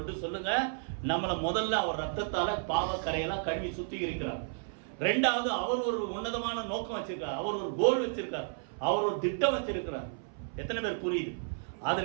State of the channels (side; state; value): left; silent; 56 dB below the other